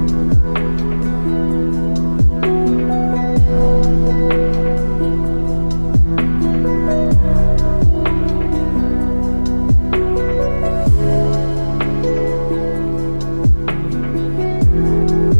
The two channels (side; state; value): both; inverted; correlation -1.00